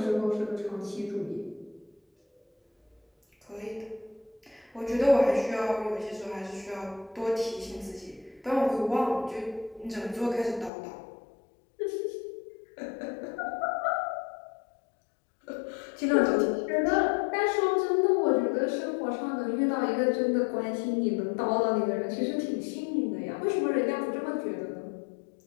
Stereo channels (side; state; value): right; drops out; at 10.7 s